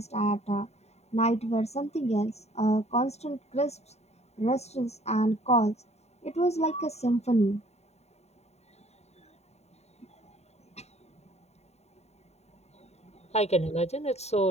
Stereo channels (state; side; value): late; right; 0.31 ms